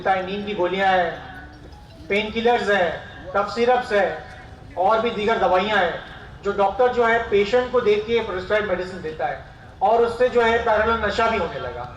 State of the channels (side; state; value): both; identical; correlation 1.00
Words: है। नींद की गोलियां हैं, पेन किलर्स है, कफ सिरप्स है और भी दीगर दवाइयां हैं, जो डॉक्टर जो है पेशेंट को देख के प्रिस्क्राइब मेडिसिन देता है और उससे जो है पैरेलल नशा भी होने लगा।